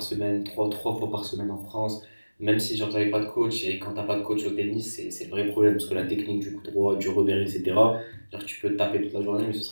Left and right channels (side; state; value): both; inverted; correlation -1.00